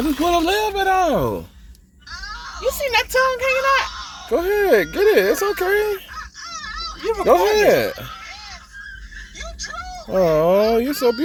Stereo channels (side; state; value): both; identical; correlation 1.00